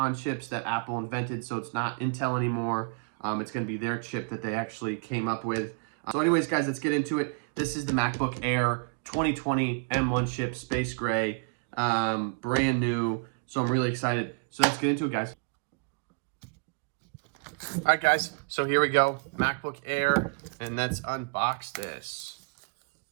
chips that Apple invented, so it's not Intel anymore. It's going to be their chip that they actually came up with. So anyways, guys, let's get into it. This is the MacBook Air 2020 M1 chip, space gray, brand new. So I'm really excited. So let's get into it, guys. All right, guys, so here we go, MacBook Air, and let's unbox this.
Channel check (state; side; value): quieter; left; 38.3 dB